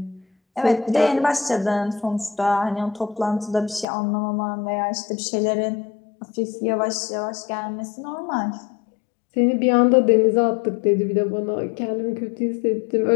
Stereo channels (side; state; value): right; drops out; at 3.9 s